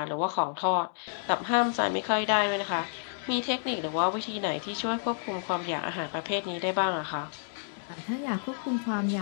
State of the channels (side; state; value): right; silent; digital silence